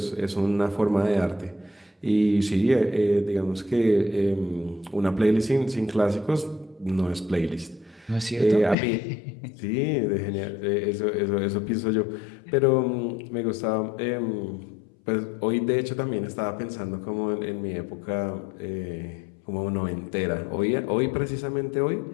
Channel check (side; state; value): right; drops out; at 8.8 s